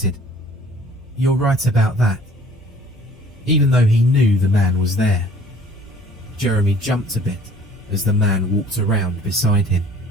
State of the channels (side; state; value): both; normal; correlation 0.52